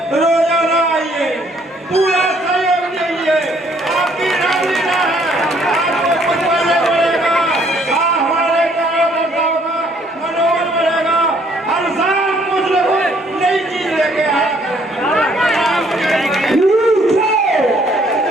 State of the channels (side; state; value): both; normal; correlation 0.64